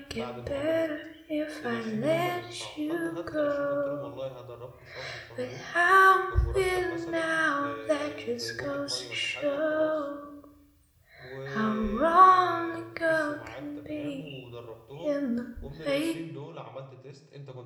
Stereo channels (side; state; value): both; identical; correlation 1.00